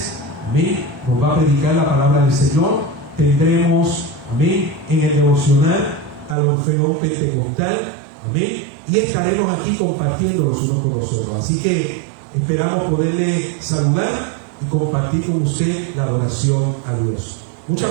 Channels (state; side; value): drops out; left; at 6.4 s